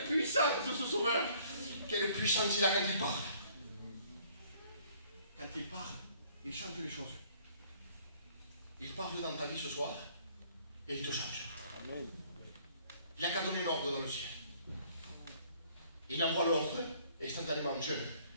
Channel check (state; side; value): inverted; both; correlation -0.59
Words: puissance de ce Sauveur. Quelle puissance il a quand il parle. Quand il parle, il change les choses. Il parle dans ta vie ce soir et il te change. Il n'a qu'à donner un ordre dans le ciel. Il envoie l'ordre et instantanément, jeune,